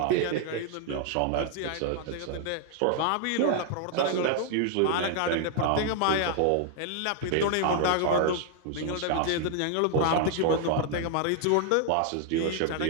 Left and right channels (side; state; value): both; different; correlation 0.00